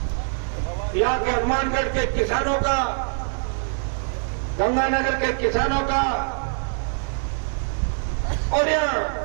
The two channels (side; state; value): left; silent; 61 dB below the other